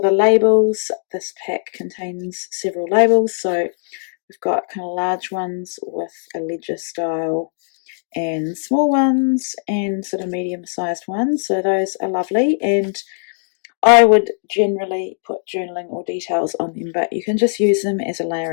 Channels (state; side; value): silent; right; digital silence